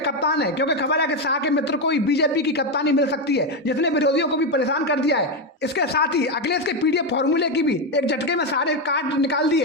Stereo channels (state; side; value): normal; both; correlation 0.08